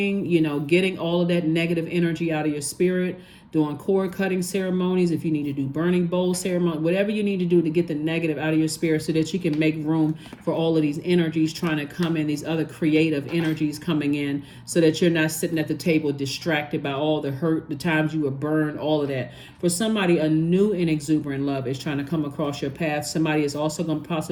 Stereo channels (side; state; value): both; identical; correlation 1.00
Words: getting all of that negative energy out of your spirit, doing cord cutting ceremonies, if you need to do burning bowl ceremony, whatever you need to do to get the negative out of your spirit so that you can make room for all of these energies trying to come in, these other creative energies coming in, so that you're not sitting at the table distracted by all the hurt, the times you were burned, all of that. For somebody, a new and exuberant love is trying to come across your path. Somebody is also going to